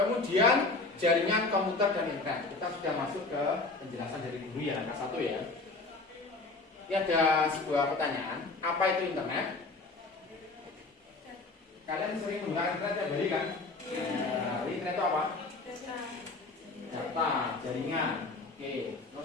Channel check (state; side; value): quieter; right; 3.5 dB